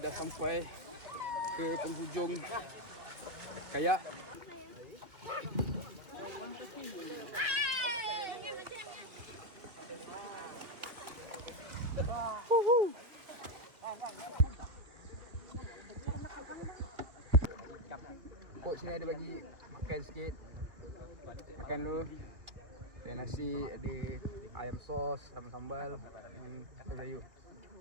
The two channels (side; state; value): left; late; 2.2 ms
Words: dah sampai ke penghujung kayak. Coach sini ada bagi makan sikit. Makan dulu. Ada nasi, ada ayam sos, ayam sambal dan sayur.